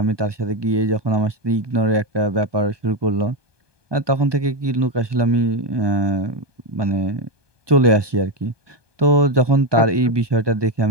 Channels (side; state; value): left; late; 1.2 ms